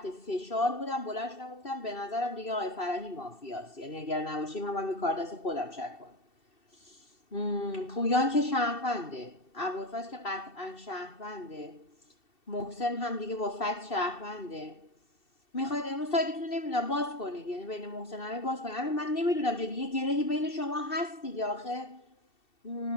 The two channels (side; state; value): right; late; 2.7 ms